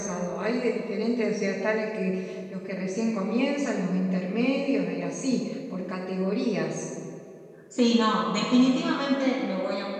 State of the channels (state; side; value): identical; both; correlation 1.00